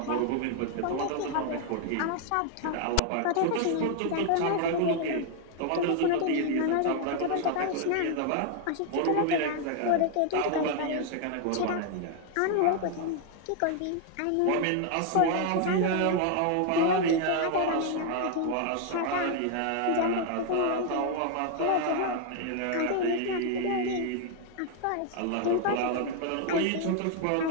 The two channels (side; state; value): both; different; correlation 0.00